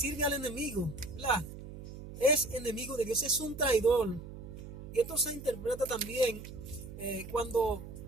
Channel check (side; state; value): right; noise; hum, 12 dB below the sound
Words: al enemigo, ¿verdad? Es enemigo de Dios, es un traidor. Y esto se interpreta también cuando